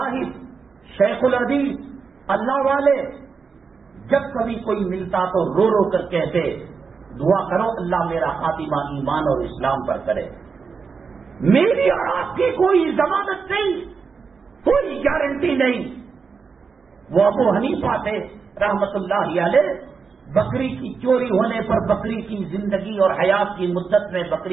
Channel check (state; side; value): quieter; left; 5.3 dB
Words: شیخ الحدیث، اللہ والے جب کبھی کوئی ملتا تو رو رو کر کہتے دعا کرو اللہ میرا خاتمہ ایمان اور اسلام پر کرے. میری اور آپ کی کوئی ضمانت نہیں، کوئی گارنٹی نہیں. وہ ابو حنیفہ تھے رحمت اللہ علیہ، بکری کی چوری ہونے پر بکری کی زندگی اور حیات کی مدت میں